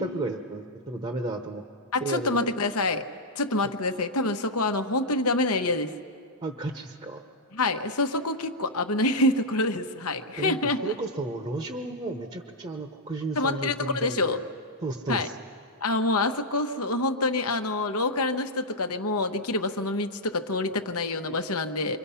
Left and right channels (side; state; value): both; normal; correlation -0.04